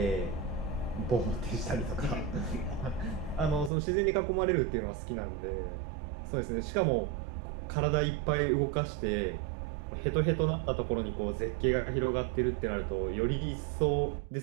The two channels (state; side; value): drops out; left; at 3.7 s